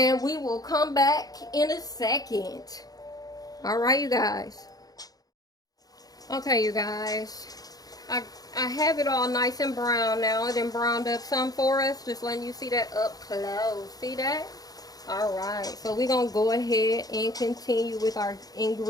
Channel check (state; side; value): late; right; 0.18 ms